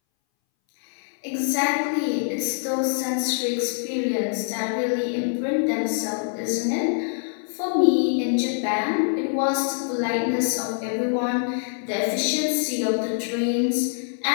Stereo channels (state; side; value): silent; right; 61 dB below the other